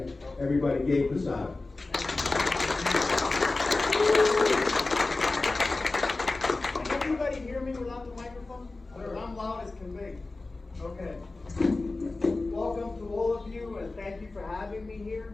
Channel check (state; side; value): quieter; right; 3.3 dB